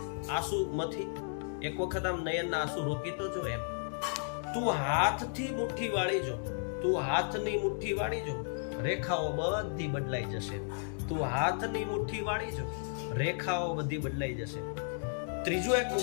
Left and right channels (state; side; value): silent; right; digital silence